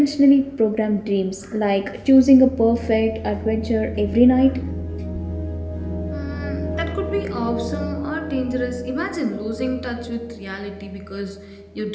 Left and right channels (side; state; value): both; identical; correlation 1.00